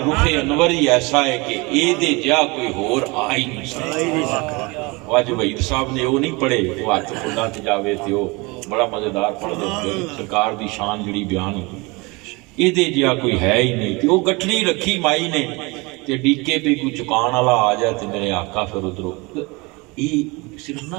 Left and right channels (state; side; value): quieter; left; 26.0 dB